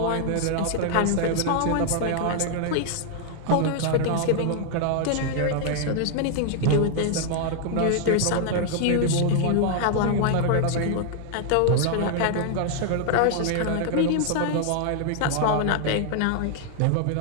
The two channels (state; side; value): different; both; correlation 0.00